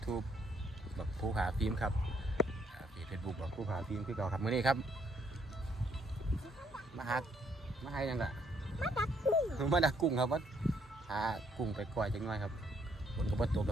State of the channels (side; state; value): both; normal; correlation 0.70